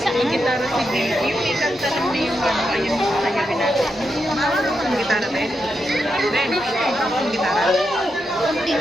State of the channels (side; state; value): both; normal; correlation 0.85